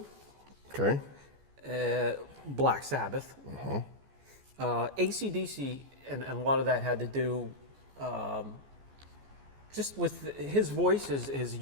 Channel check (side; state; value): left; late; 14 ms